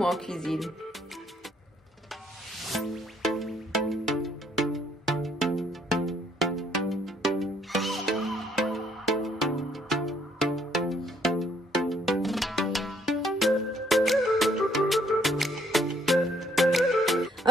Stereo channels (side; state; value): both; normal; correlation 0.67